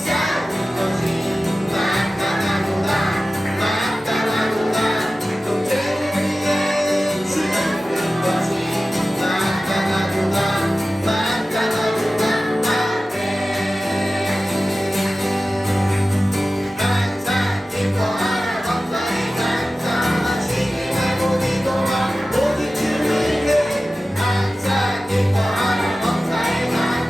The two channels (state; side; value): normal; both; correlation 0.95